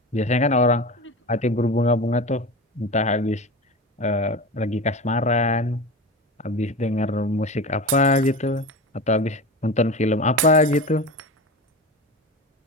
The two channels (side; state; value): both; normal; correlation 0.28